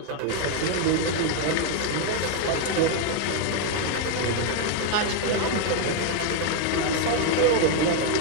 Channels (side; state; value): both; different; correlation 0.01